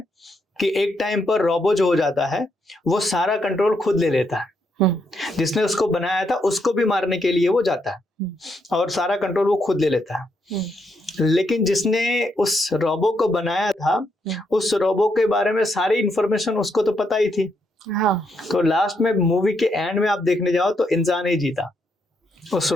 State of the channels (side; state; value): both; normal; correlation 0.78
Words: कि एक टाइम पर रोबो जो हो जाता है वो सारा कंट्रोल खुद ले लेता है। जिसने उसको बनाया था उसको भी मारने के लिए वो जाता है और सारा कंट्रोल वो खुद ले लेता है। लेकिन जिसने उस रोबो को बनाया था, उस रोबो के बारे में सारी इंफॉर्मेशन उसको तो पता ही थी। हाँ। तो लास्ट में मूवी के एंड में आप देखने जाओ तो इंसान ही जीता, उस